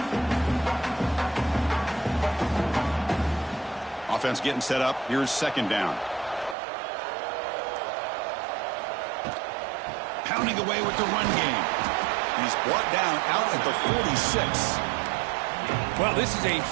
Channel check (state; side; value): drops out; left; at 6.6 s